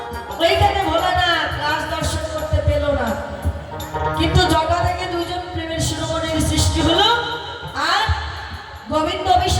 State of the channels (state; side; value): identical; both; correlation 1.00